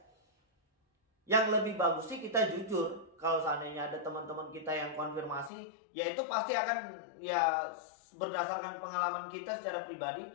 Yang lebih bagus sih kita jujur. Kalau seandainya ada teman-teman kita yang konfirmasi, ya itu pasti akan ya berdasarkan pengalaman kita secara pribadi.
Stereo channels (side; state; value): right; drops out; at 5.5 s